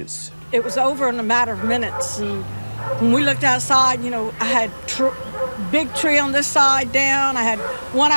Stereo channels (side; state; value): both; inverted; correlation -1.00